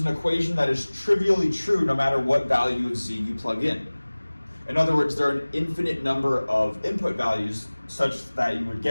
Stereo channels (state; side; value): inverted; both; correlation -1.00